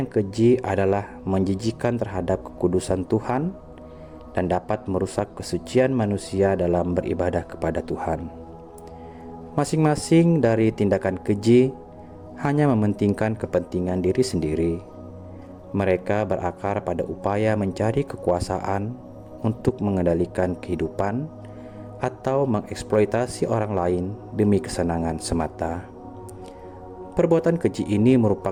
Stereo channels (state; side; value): identical; both; correlation 1.00